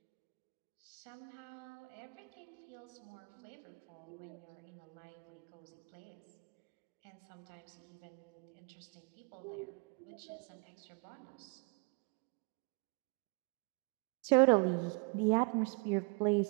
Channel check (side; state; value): left; quieter; 34.2 dB